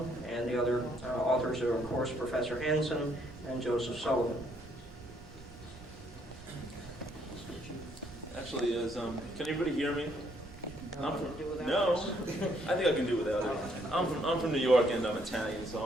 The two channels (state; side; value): noise; right; rumble, 19 dB below the sound